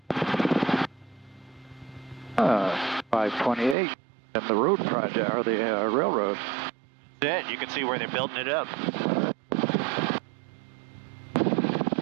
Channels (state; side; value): drops out; left; at 3.8 s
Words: 528 and the road project, or the railroad. That's it. You can see where they're building it up.